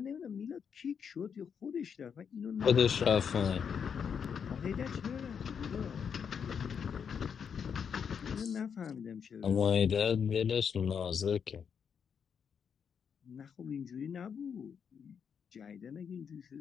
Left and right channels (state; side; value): quieter; right; 7.1 dB